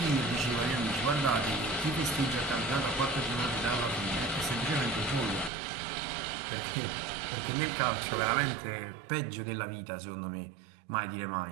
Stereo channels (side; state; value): left; drops out; at 5.5 s